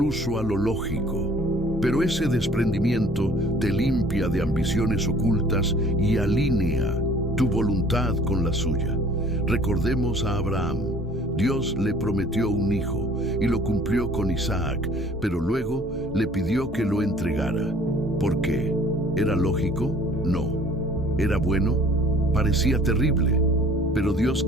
a lo lógico. Pero ese desprendimiento te limpia de ambiciones ocultas y alinea tu voluntad con la suya. Recordemos a Abraham. Dios le prometió un hijo y lo cumplió con Isaac, pero luego le pidió que lo entregara. ¿Por qué? ¿Era lógico? No. ¿Era bueno? Parecía terrible, pero Dios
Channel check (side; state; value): both; normal; correlation 0.53